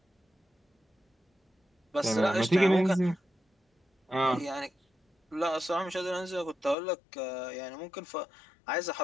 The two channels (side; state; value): right; drops out; at 6.8 s